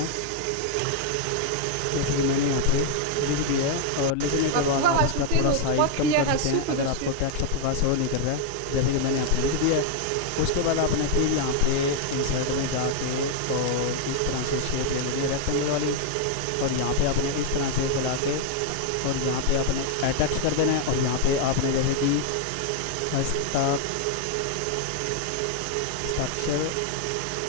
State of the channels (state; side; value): different; both; correlation 0.00